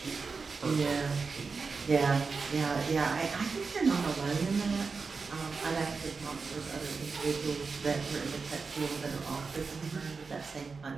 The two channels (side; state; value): left; quieter; 4.7 dB